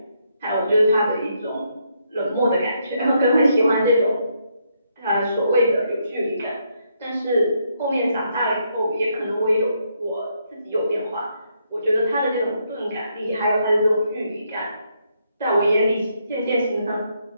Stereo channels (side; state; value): both; inverted; correlation -0.76